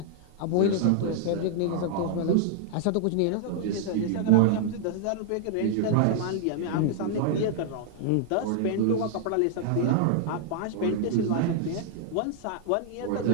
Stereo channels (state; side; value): different; both; correlation -0.01